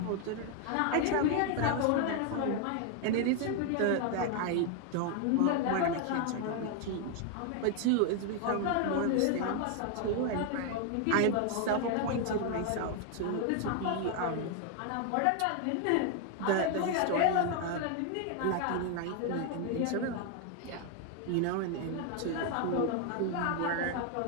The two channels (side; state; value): both; different; correlation 0.01